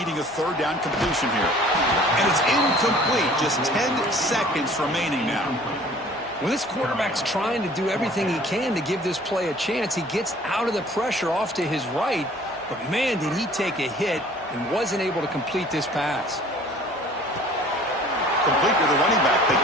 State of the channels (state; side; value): normal; both; correlation 0.51